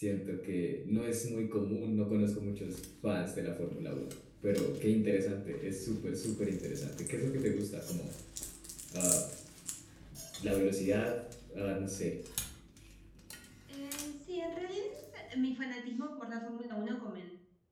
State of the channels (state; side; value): identical; both; correlation 1.00